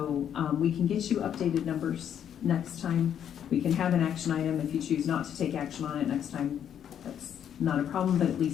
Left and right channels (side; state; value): right; quieter; 9.2 dB